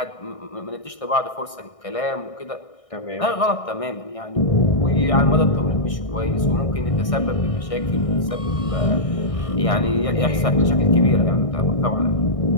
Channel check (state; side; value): late; right; 1.6 ms